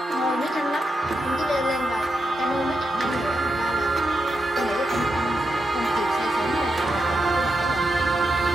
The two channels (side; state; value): both; normal; correlation 0.85